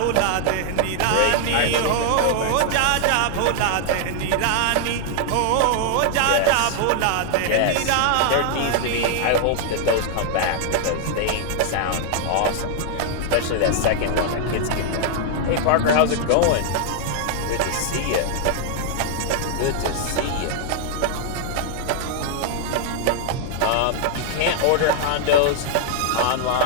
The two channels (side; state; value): both; different; correlation 0.00